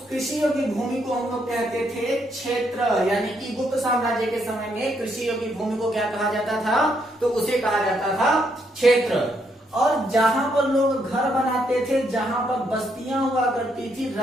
कृषि योग्य भूमि को हम लोग कहते थे क्षेत्र। यानी कि गुप्त साम्राज्य के समय में कृषि योग्य भूमि को क्या कहा जाता था, तो उसे कहा जाता था क्षेत्र। और जहां पर लोग घर बनाते थे, जहां पर बस्तियां हुआ करती थी,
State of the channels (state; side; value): normal; both; correlation 0.75